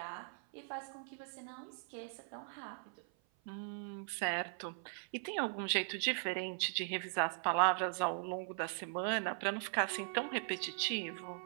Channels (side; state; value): left; silent; 51 dB below the other